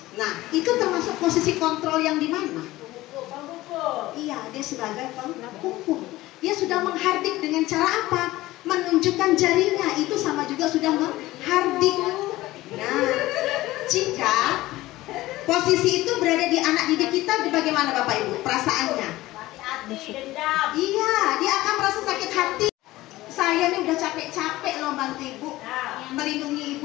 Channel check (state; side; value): quieter; right; 17.5 dB